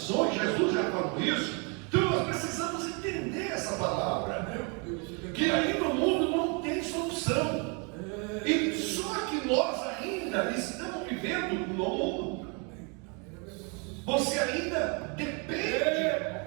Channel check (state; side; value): quieter; left; 33.9 dB